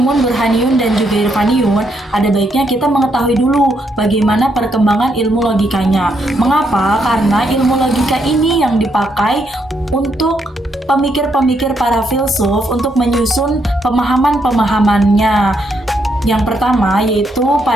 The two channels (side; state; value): both; normal; correlation 0.76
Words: burhaniyun, dan juga irfaniyun, ada baiknya kita mengetahui dulu bagaimana perkembangan ilmu logikanya. Mengapa? Karena ilmu logika ini yang dipakai untuk pemikir-pemikir para filsuf untuk menyusun pemahaman-pemahamannya. Yang pertama yaitu